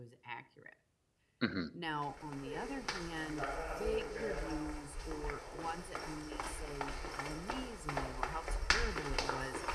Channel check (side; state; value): both; identical; correlation 1.00